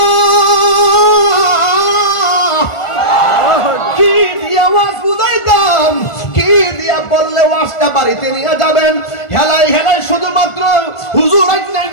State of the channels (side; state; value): right; late; 1.4 ms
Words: কি দিয়া ওয়াজ বুঝাইতাম কি দিয়া বললে ওয়াজটা বাড়িতে নিয়ে যাবেন হেলাই হেলাই শুধুমাত্র হুজুর আইনাই